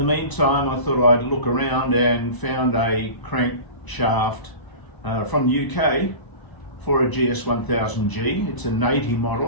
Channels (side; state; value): right; late; 1.0 ms